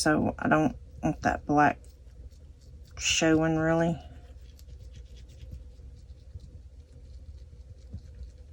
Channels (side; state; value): both; identical; correlation 1.00